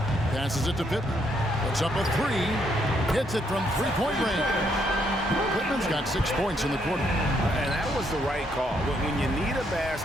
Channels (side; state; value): both; normal; correlation 0.73